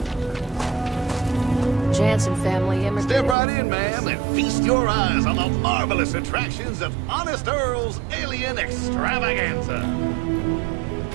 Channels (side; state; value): left; drops out; at 3.4 s